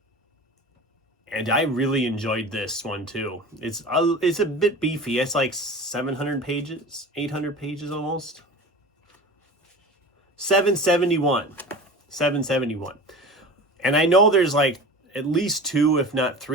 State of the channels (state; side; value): normal; both; correlation 0.35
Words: And I really enjoyed this one too. It's a bit beefy. It's like 700 pages, 800 pages almost. 771. And I know there's like at least 2, if not